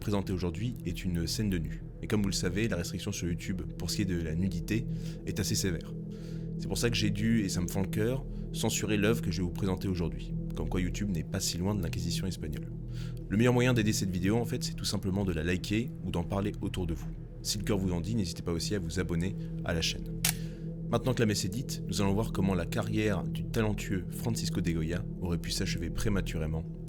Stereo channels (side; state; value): both; identical; correlation 1.00